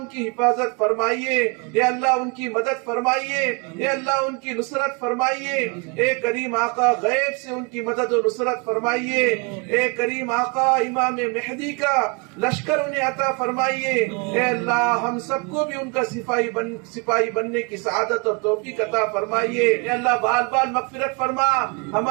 کی حفاظت فرمائیے اے اللہ ان کی مدد فرمائیے اے اللہ ان کی نصرت فرمائیے اے کریم آقا غیب سے ان کی مدد و نصرت فرمائیے اے کریم آقا امام مہدی کا لشکر انہیں عطا فرمائیے اے اللہ ہم سب کو بھی ان کا سپاہی بننے کی سعادت اور توفیق عطا فرمائیے اے اللہ بال بال مغفرت فرما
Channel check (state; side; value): quieter; left; 31.9 dB